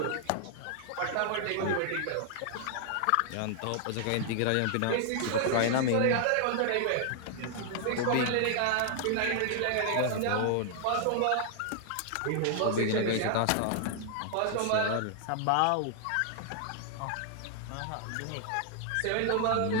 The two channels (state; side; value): different; both; correlation 0.00